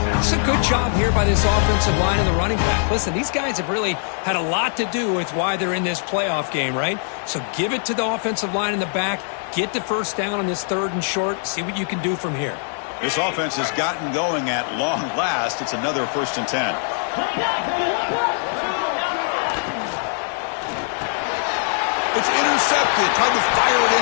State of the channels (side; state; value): right; silent; 64 dB below the other